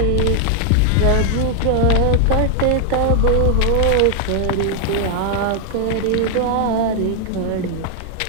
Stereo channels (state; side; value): different; both; correlation 0.00